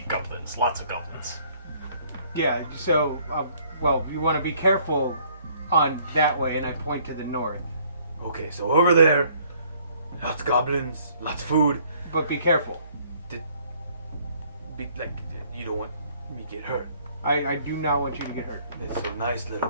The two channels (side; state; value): both; inverted; correlation -0.61